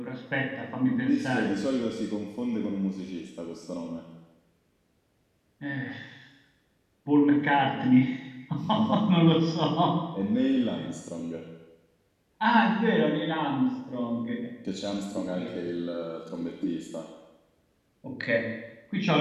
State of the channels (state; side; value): identical; both; correlation 1.00